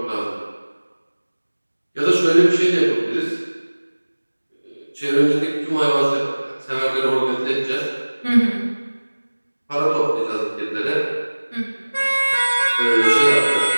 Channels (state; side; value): inverted; both; correlation -1.00